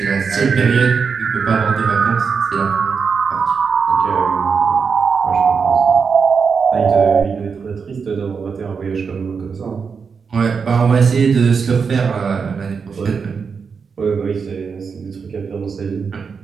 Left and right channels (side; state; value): left; quieter; 5.7 dB